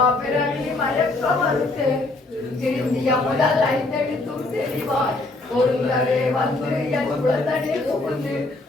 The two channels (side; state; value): right; quieter; 3.0 dB